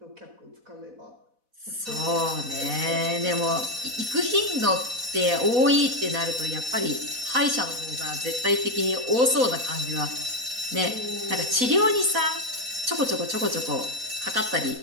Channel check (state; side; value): late; left; 4.1 ms